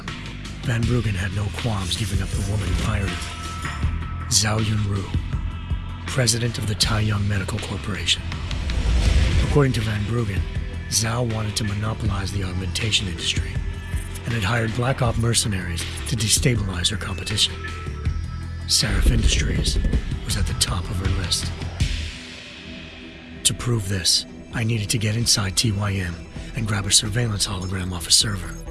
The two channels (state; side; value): identical; both; correlation 1.00